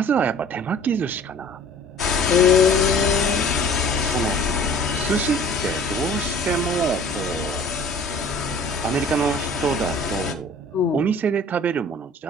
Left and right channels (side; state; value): both; normal; correlation 0.48